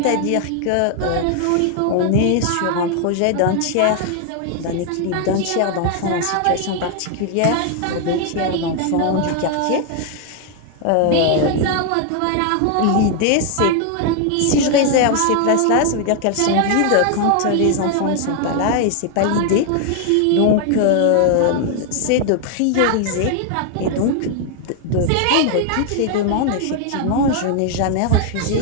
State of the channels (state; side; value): different; both; correlation 0.00